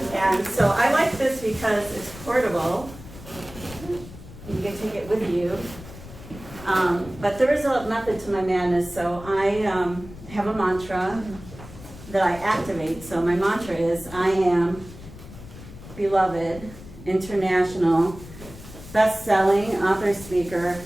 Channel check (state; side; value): noise; left; rumble, 16 dB below the sound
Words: And so I like this because it's portable. You can take it with you. But there is a method to my madness. So I have a mantra that I activate. So my mantra is, I am beloved, international, best-selling, author, speaker,